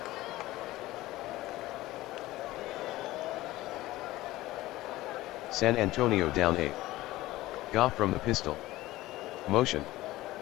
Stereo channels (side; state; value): right; quieter; 17.4 dB